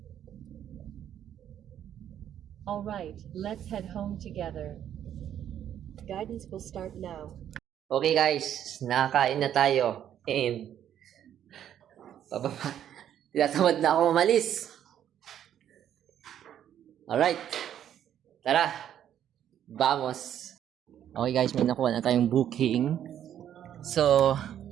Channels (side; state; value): left; quieter; 10.3 dB